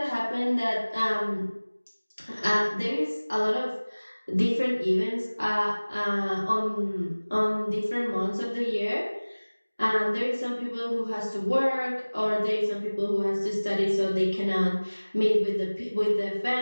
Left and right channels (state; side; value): inverted; both; correlation -1.00